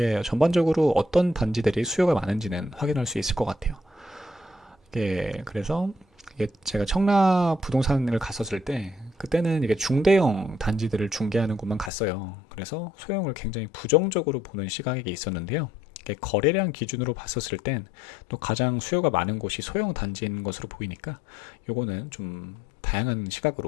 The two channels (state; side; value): drops out; right; at 11.9 s